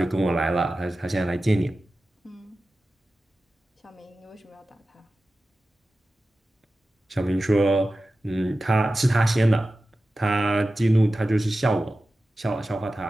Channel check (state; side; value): normal; both; correlation 0.94